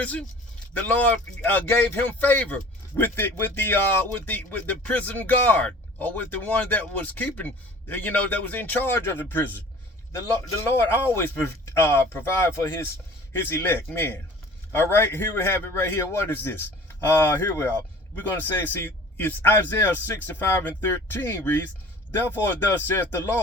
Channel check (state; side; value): normal; both; correlation 0.46